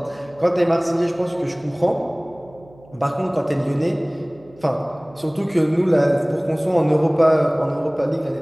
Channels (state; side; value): noise; right; hum, 25 dB below the sound